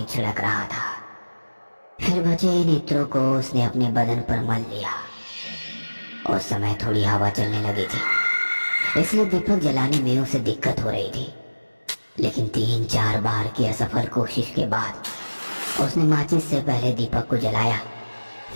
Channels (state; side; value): inverted; both; correlation -1.00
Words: छिड़क रहा था। फिर बचे इन इत्रों को उसने अपने बदन पर मल लिया। उस समय थोड़ी हवा चलने लगी थी, इसलिए दीपक जलाने में उसे दिक्कत हो रही थी। लेकिन 3-4 बार की असफल कोशिश के बाद उसने माचिस से पहले दीपक को जलाया,